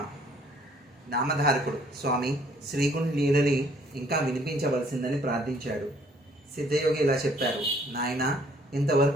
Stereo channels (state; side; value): normal; both; correlation 0.62